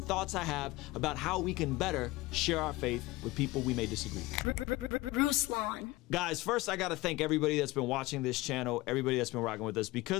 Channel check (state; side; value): quieter; right; 19.8 dB